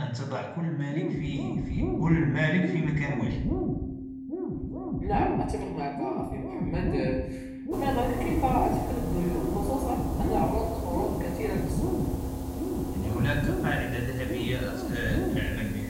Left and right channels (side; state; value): both; identical; correlation 1.00